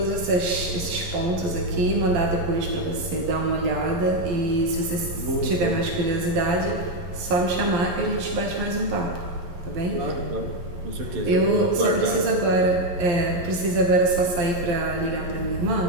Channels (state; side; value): late; left; 11 ms